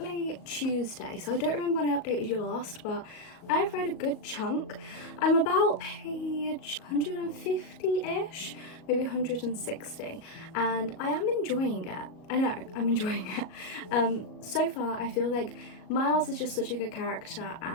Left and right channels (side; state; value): right; late; 38 ms